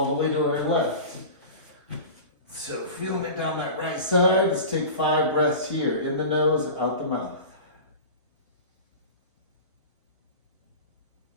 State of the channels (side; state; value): both; inverted; correlation -0.33